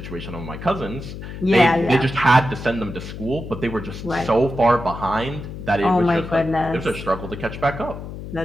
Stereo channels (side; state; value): left; noise; hum, 10 dB below the sound